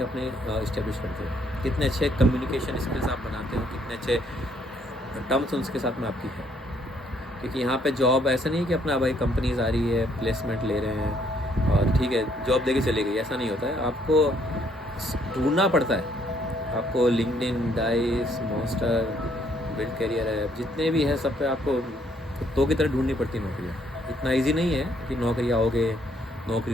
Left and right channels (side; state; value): both; normal; correlation 0.68